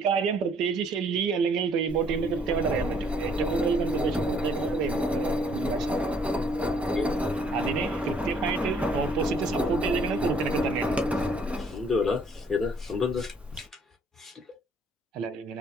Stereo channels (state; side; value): normal; both; correlation 0.63